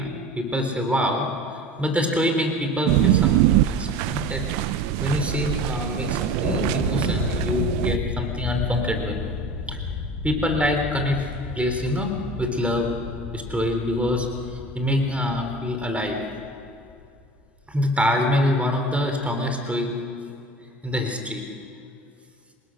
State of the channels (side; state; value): both; normal; correlation 0.37